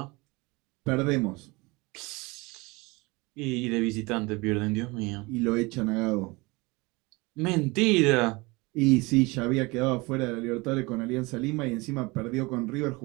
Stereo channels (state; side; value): quieter; left; 24.7 dB